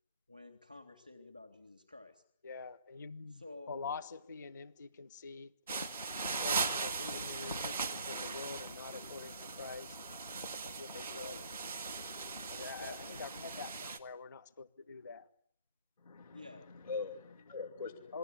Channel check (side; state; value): both; inverted; correlation -0.56